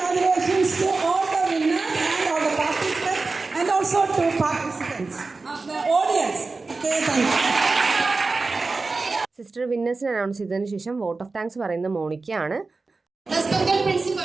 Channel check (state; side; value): quieter; left; 3.8 dB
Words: to all the winners and all the participants and also to participants of the audience. Okay, thank you. Sister വിന്നേഴ്സിനെ announce ചെയ്തതിന് ശേഷം vote of thanks പറയുന്നത് മോണിക്കയാണ്. Respected